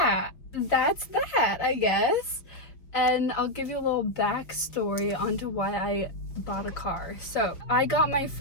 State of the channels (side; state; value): right; late; 5.4 ms